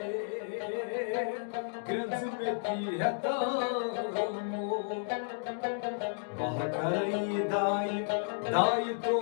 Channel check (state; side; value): silent; right; digital silence